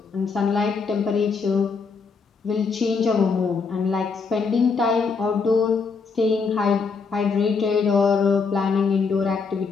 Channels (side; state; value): right; quieter; 5.0 dB